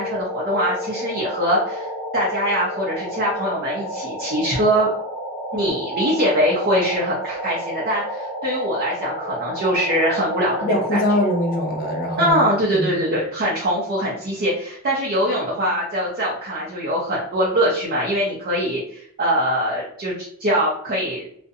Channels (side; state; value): both; normal; correlation 0.13